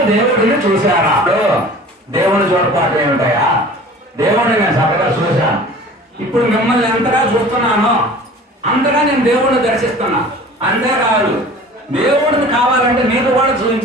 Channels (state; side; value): normal; both; correlation 0.43